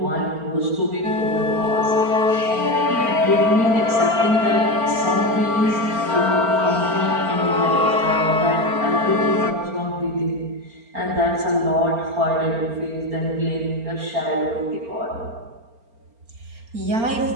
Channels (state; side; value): late; left; 4.4 ms